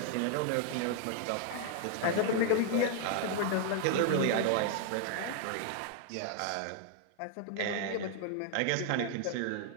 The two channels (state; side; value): different; both; correlation 0.00